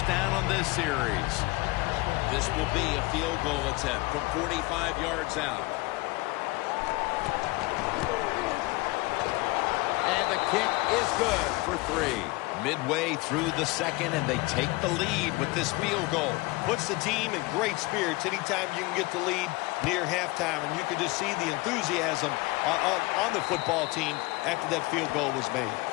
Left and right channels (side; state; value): right; quieter; 22.9 dB